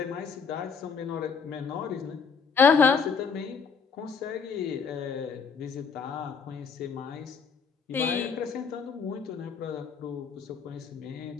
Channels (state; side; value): quieter; right; 5.8 dB